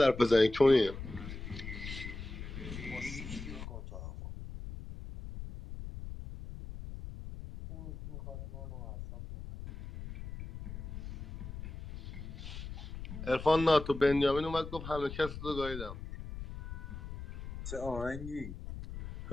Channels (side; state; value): left; noise; rumble, 9 dB below the sound